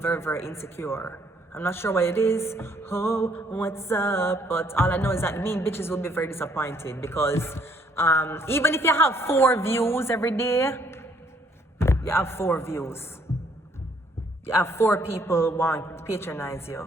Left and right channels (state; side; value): normal; both; correlation 0.66